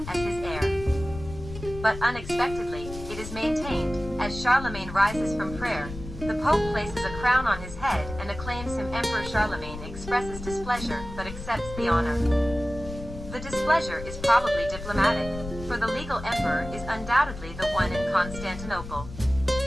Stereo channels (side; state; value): left; noise; rumble, 11 dB below the sound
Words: as his heir. But unexpectedly, it is maintained, as Charlemagne rises from prayer, the Pope places a crown on his head and acclaims him Emperor. Charlemagne expresses displeasure but accepts the honor. The displeasure is probably diplomatic, for the legal emperor is undoubtedly the one in Constantinople.